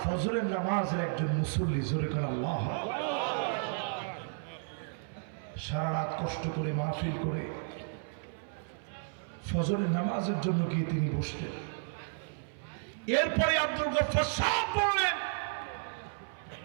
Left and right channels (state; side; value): silent; left; 56 dB below the other